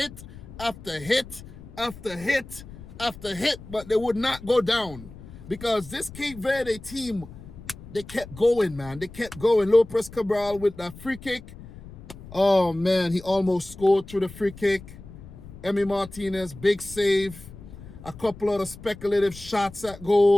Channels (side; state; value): left; noise; rumble, 16 dB below the sound